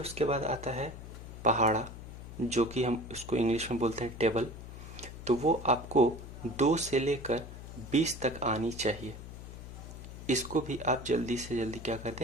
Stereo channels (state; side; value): noise; left; hum, 12 dB below the sound